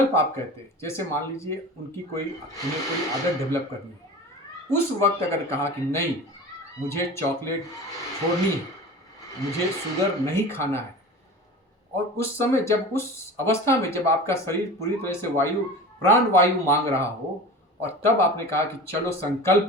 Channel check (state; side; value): normal; both; correlation 0.35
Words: आप कहते हैं, जैसे मान लीजिए उन्हें कोई आदत डेवलप करनी है, उस वक्त अगर कहा कि नहीं, मुझे चॉकलेट छोड़नी है, मुझे शुगर नहीं खाना है, और उस समय जब उस अवस्था में जब आपका शरीर पूरी तरह से प्राण वायु मांग रहा हो, और तब आपने कहा कि चलो